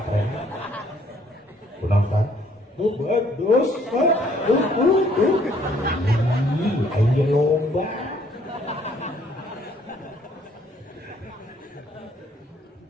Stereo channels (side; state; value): both; normal; correlation 0.63